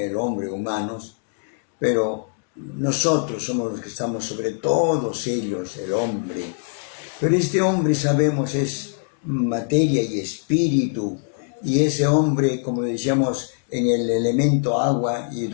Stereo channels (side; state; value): right; silent; 64 dB below the other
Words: hombre humanos, pero nosotros somos los que estamos sobre todos ellos, el hombre. Pero este hombre, sabemos, es materia y espíritu, y ese hombre, como decíamos, en el elemento agua,